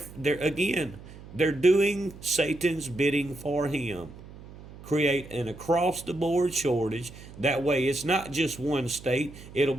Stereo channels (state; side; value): noise; right; hum, 17 dB below the sound